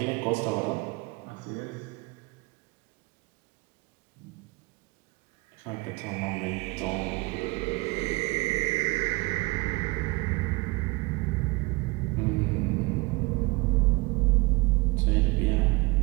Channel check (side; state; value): left; quieter; 24.5 dB